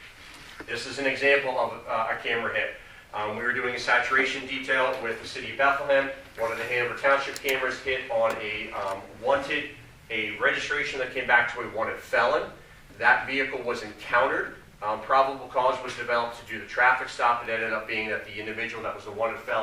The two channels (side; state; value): both; identical; correlation 1.00